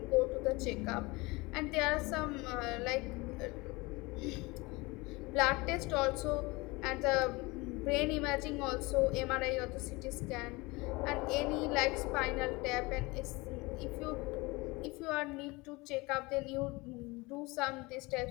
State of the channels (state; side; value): quieter; right; 23.9 dB